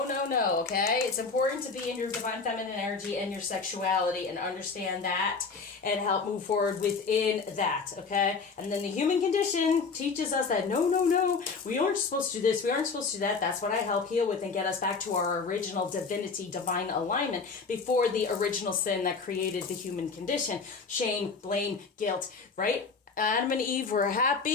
It's important to be in your divine feminine energy and your sexuality and understand that and help move forward within that, okay? And then the human condition teaches us that no, we aren't supposed to do this, we aren't supposed to do that. That's what I help heal with and get us back to our original divinity, divine alignment before the original sin that created the human condition. Shame, blame, guilt, right? Adam and Eve were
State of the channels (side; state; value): right; quieter; 4.8 dB